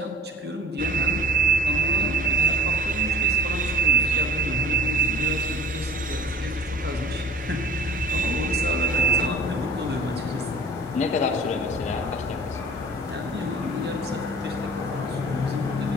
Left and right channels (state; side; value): normal; both; correlation 0.46